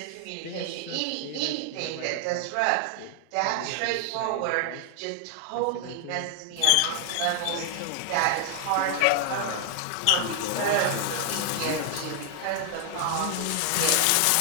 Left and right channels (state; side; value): different; both; correlation 0.00